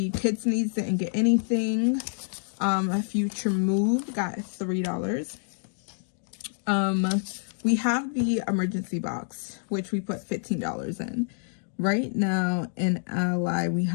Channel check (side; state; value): right; silent; 59 dB below the other